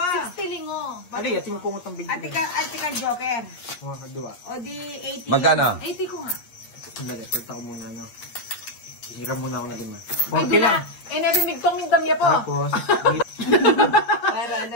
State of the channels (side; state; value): right; late; 8.5 ms